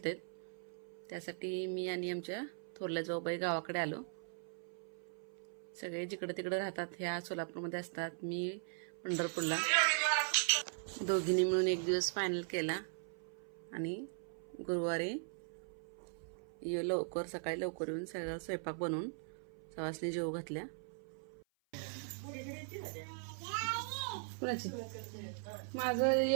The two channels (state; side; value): silent; left; 51 dB below the other